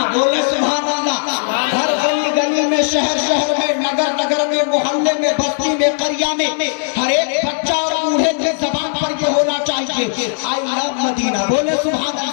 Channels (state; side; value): silent; right; digital silence